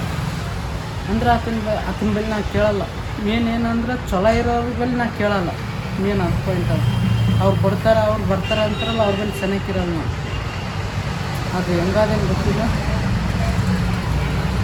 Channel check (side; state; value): both; identical; correlation 1.00